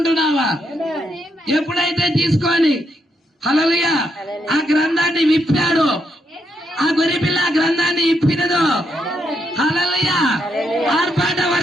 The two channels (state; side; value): normal; both; correlation 0.79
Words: ఎప్పుడైతే తీసుకొని హల్లెలూయా ఆ గ్రంథాన్ని విప్పాడు, ఆ గొర్రె పిల్ల ఆ గ్రంథాన్ని ఇప్పినదో హల్లెలూయా ఆర్పాట